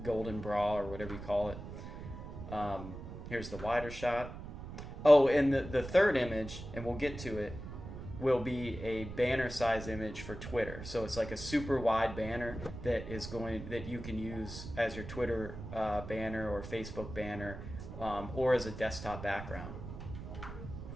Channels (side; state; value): right; noise; rumble, 10 dB below the sound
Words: golden bra or whatever you call it. Here's the wider shot. Oh, and the third image, and we'll get to it, will be a banner size image for Twitter. So it's like a super wide banner that you can use as your Twitter banner or Facebook banner, or as a desktop background.